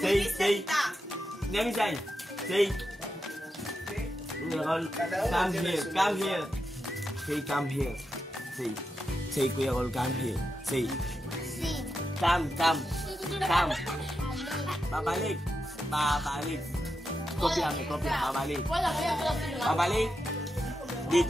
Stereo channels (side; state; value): both; normal; correlation 0.87